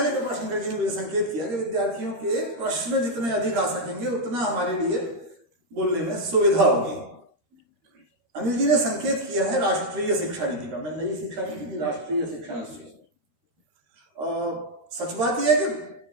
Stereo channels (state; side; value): late; left; 13 ms